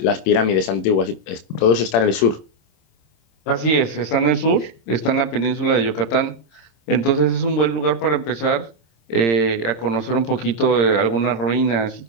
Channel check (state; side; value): late; right; 26 ms